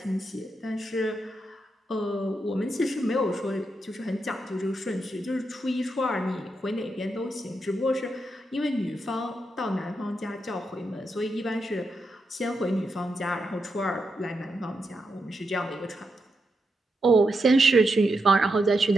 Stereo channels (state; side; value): normal; both; correlation 0.84